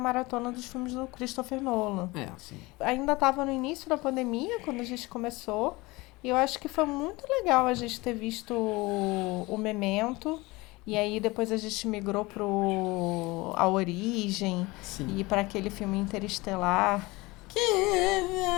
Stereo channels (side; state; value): right; quieter; 22.4 dB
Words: dos filmes do Christopher Nolan. Sim. Ainda estava no início da pandemia, quando a gente começou, e eu acho que foi muito legal a gente ter visto o Memento, e aí depois a gente migrou A Origem, Sim. e para aquele filme Interestelar.